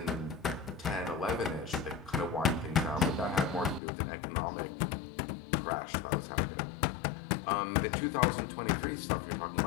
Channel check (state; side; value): drops out; right; at 3.8 s